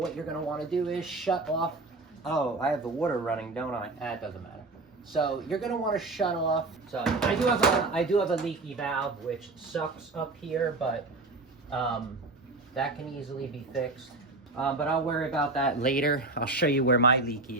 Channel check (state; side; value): quieter; left; 3.3 dB